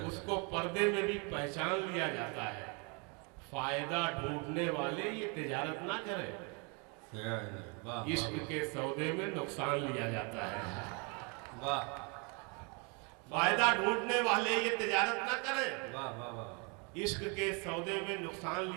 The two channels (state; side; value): quieter; left; 33.3 dB